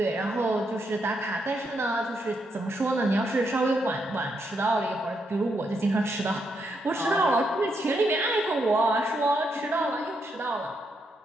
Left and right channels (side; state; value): both; normal; correlation 0.79